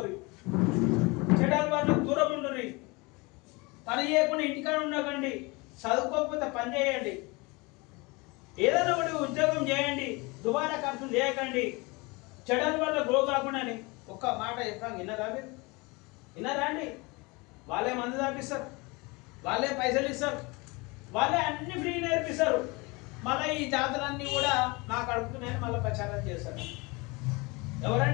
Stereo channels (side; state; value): right; quieter; 26.1 dB